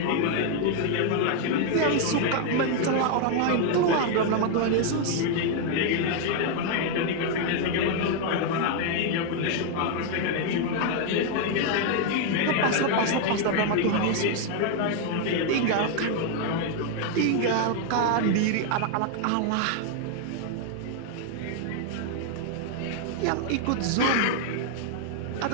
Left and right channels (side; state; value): both; different; correlation 0.00